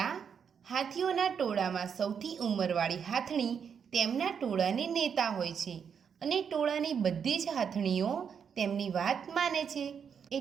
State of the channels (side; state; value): left; quieter; 7.1 dB